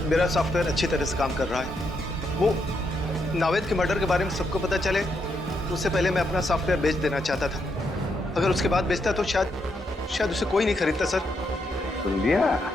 मेरा सॉफ्टवेयर अच्छी तरह से काम कर रहा है। वो नावेद के मर्डर के बारे में सबको पता चले उससे पहले मैं अपना सॉफ्टवेयर बेच देना चाहता था। अगर उसके बाद बेचता तो शायद उसे कोई नहीं खरीदता सर। सुन लिया?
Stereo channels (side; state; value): both; normal; correlation 0.79